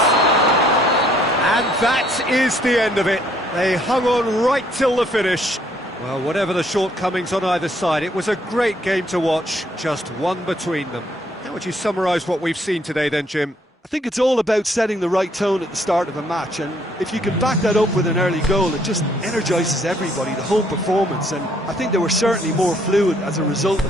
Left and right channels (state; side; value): normal; both; correlation 0.66